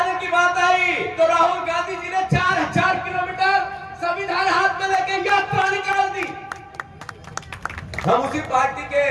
की बात आई तो राहुल गांधी जी ने 4000 किलोमीटर संविधान हाथ में लेके यात्रा निकाल दी। हम उसी पार्टी के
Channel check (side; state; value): both; identical; correlation 1.00